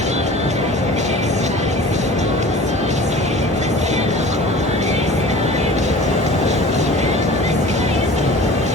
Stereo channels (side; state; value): both; normal; correlation 0.41